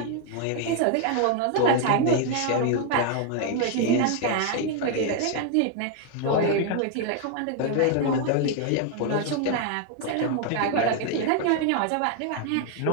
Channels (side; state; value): both; different; correlation 0.00